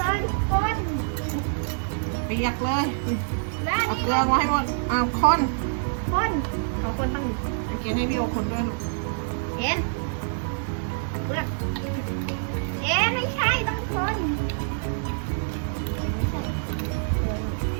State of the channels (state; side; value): silent; left; digital silence